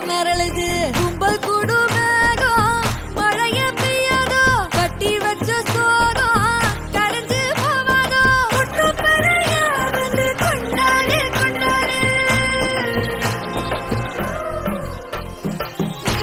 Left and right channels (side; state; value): both; identical; correlation 1.00